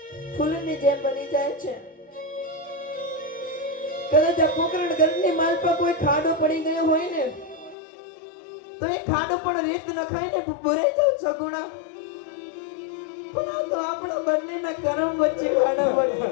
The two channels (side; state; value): right; drops out; at 7.8 s